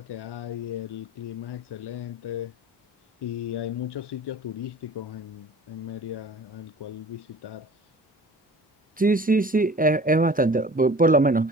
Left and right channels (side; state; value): both; normal; correlation 0.44